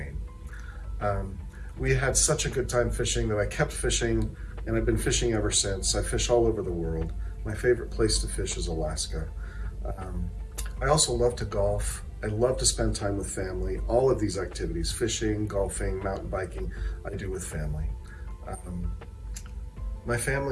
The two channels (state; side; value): identical; both; correlation 1.00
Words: We had such a good time fishing that I kept fishing, and I've been fishing ever since. I fish all over the world. My favorite place to fish is Alaska. I also love to golf. I love to spend time with family. All of these activities, fishing, golfing, mountain biking, I do with family. My